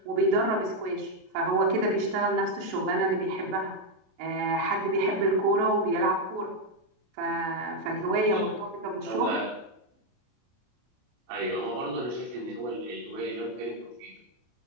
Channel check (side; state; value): left; late; 33 ms